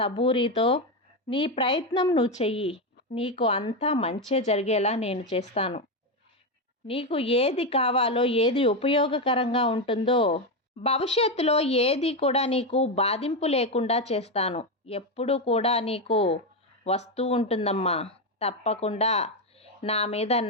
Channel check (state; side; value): normal; both; correlation 0.09